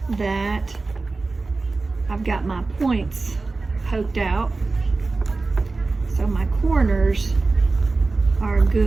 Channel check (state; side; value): quieter; left; 3.6 dB